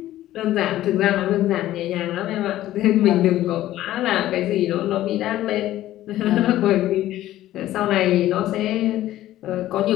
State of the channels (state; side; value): quieter; right; 14.2 dB